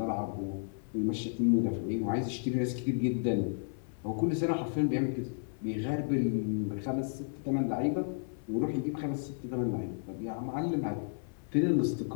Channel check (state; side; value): silent; right; 56 dB below the other